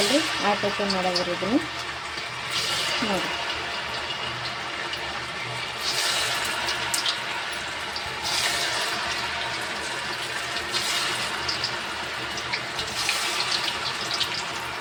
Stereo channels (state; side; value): identical; both; correlation 1.00